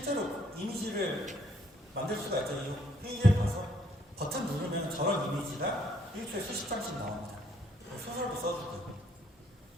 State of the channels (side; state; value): both; normal; correlation 0.66